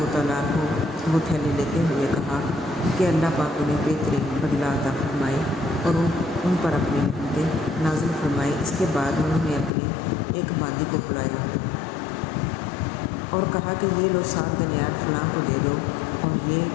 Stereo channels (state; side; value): drops out; right; at 9.7 s